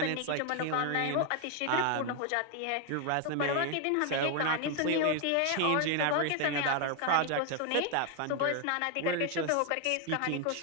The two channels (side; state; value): both; different; correlation 0.01